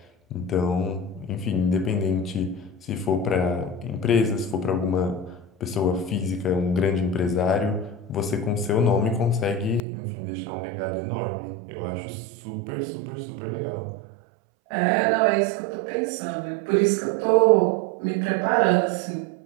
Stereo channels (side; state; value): left; drops out; at 9.8 s